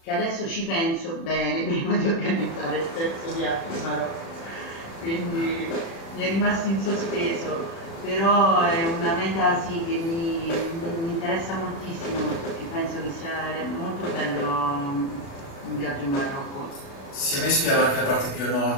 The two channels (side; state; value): right; late; 36 ms